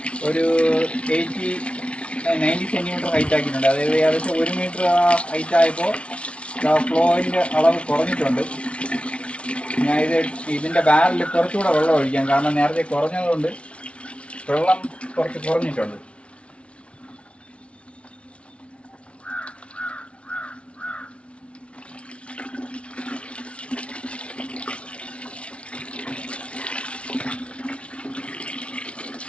ഒരു 90 സെൻറ്റിമീറ്റർ ഹൈറ്റ് ആക്കിയിട്ടുണ്ട്. അതായത് ഏകദേശം 1 മീറ്റർ ഹൈറ്റ് ആയപ്പോൾ ഫ്ലോയിൻ്റെ അളവ് കുറഞ്ഞിട്ടുണ്ട്. ഞാൻ ഇതിൻ്റെ ബാരലിൽ കുറച്ചുകൂടെ വെള്ളം ഒഴിക്കാം. കാരണം നേരത്തെ കുറഞ്ഞതുകൊണ്ട് വെള്ളം കുറച്ച് കുറഞ്ഞിട്ടുണ്ട്.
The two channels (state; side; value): late; right; 0.061 ms